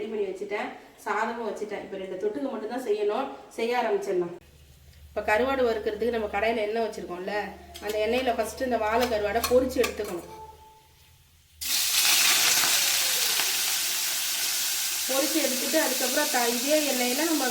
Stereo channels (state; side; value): identical; both; correlation 1.00